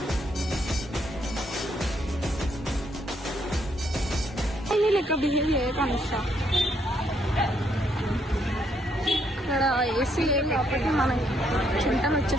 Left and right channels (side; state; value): both; normal; correlation 0.72